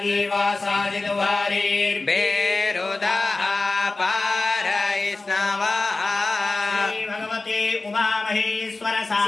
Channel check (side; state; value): right; quieter; 3.4 dB